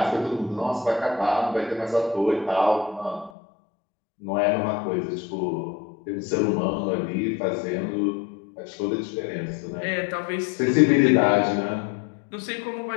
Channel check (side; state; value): right; drops out; at 3.3 s